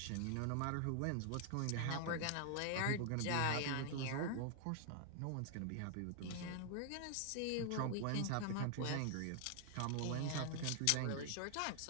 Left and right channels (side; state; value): both; different; correlation 0.00